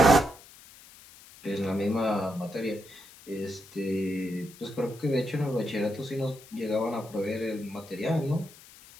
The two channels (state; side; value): noise; left; hiss, 21 dB below the sound